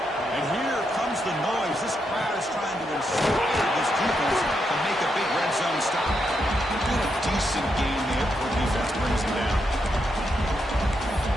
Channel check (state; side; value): normal; both; correlation 0.81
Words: And here comes the noise. This crowd is trying to inspire this defense to make a big red zone stop. Doing a decent game there before the defense brings him down.